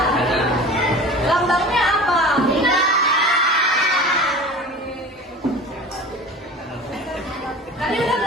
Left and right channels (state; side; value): normal; both; correlation 0.38